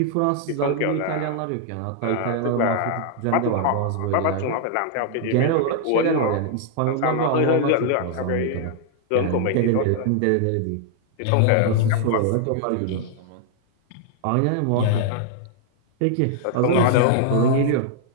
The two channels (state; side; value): different; both; correlation -0.01